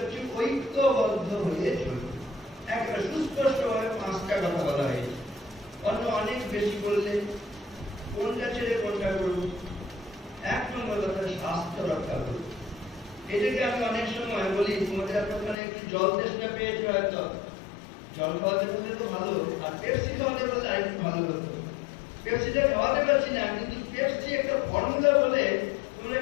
ঐক্যবদ্ধ হয়ে চলবে। একটা সুস্পষ্টভাবে 5টা কথা বলা হয়েছে। অন্য অনেক বেশি বললে কোনটা ছেড়ে কোনটা করব? 1 নম্বর কথা, স্বাস্থ্য রক্ষা করব। এটাকে আমি অনেক সময় বলি, তোমাদের আপনারা একটু জল তেষ্টা পেয়েছে, হয়তো জল খাওয়াতে পারলে তো ভালো, আর পেপসি খাওয়াতে পারলে আর একটু ভালো হতো। পেপসিটা খাওয়াতে পারছি না, কিন্তু পেপসি একটা ফর্মুলা বলে তোমরা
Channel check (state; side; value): drops out; right; at 15.6 s